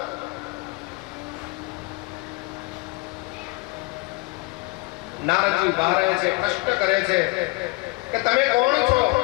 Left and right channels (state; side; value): quieter; right; 26.1 dB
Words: નારદજી ઉભા રહે છે, પ્રશ્ન કરે છે કે તમે કોણ છો?